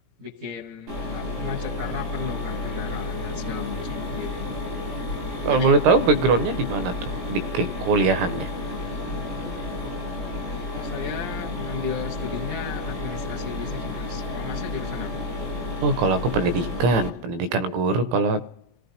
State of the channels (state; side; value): late; left; 17 ms